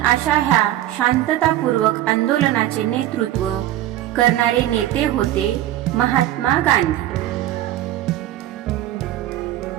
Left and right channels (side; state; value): left; quieter; 13.6 dB